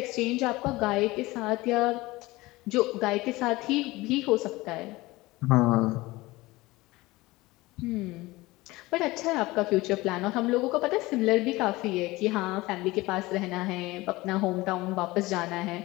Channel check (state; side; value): quieter; right; 20.4 dB